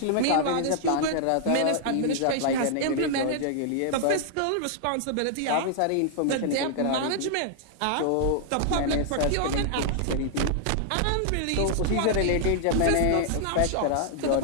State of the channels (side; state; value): both; different; correlation -0.01